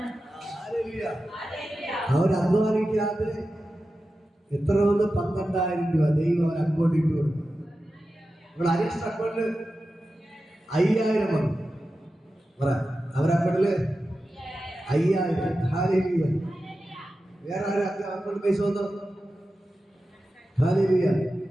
അവർ അധ്വാനിക്കാതെ എത്ര വന്ന് 12,000 രൂപ ദൈവം അവർ അക്കൗണ്ടിൽ ഇട്ട് കൊടുക്കും. ഇവിടെ അരീഷ് അക്കൗണ്ടില് 5,000 വന്നു. അവരുടെ അക്കൗണ്ടില് 5,000. ഹല്ലേലൂയ. വേറെ ആരും അക്കൗണ്ടിൽ പൈസ വന്നോ? ഹല്ലേലൂയ.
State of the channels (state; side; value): normal; both; correlation 0.92